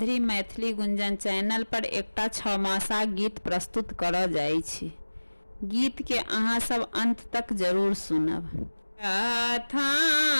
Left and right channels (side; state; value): both; inverted; correlation -1.00